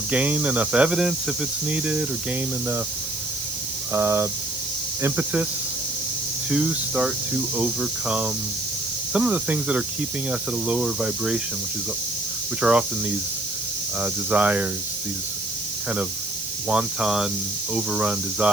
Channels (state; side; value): noise; right; hiss, 6 dB below the sound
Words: gain enough evidence if it's needed, or gain enough impetus to start to overcome some of the things that are keeping us at a lower vibration, which are often these desires, these kind of wanton, overrun